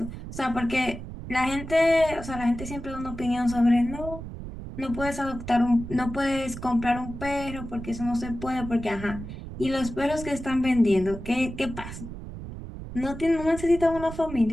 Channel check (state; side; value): noise; right; rumble, 10 dB below the sound